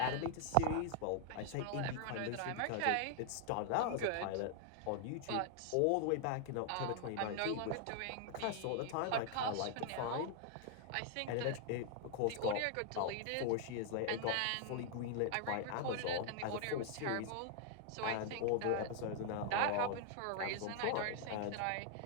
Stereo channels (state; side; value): different; both; correlation 0.00